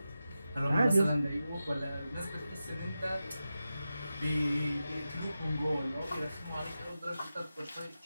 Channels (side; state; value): both; inverted; correlation -0.92